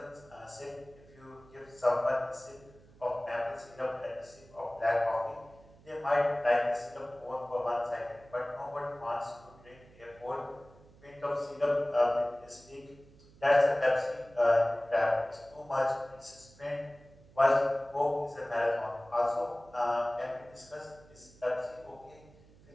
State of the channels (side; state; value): right; noise; hum, 25 dB below the sound